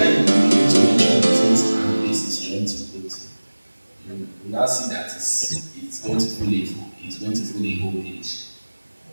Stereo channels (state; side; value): inverted; both; correlation -1.00